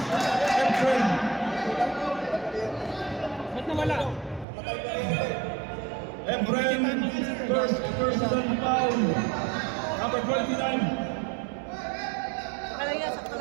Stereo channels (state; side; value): drops out; left; at 4.5 s